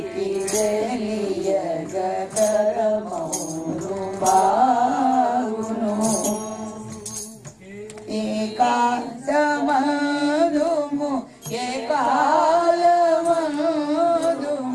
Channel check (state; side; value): identical; both; correlation 1.00